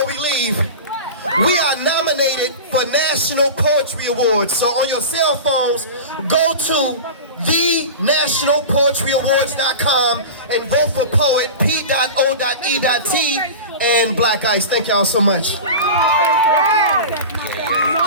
we leave. We are nominated for National Poetry Awards. So on your cell phones, go to thenationalpoetryawards.com and vote for P.O.E.T, P.O.E.T, and Black Ice. Thank y'all so much. 1,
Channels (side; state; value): both; inverted; correlation -0.31